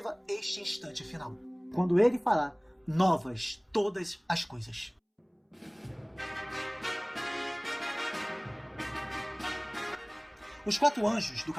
este instante final, quando ele fará novas todas as coisas. Os 4 anjos do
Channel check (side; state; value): both; identical; correlation 1.00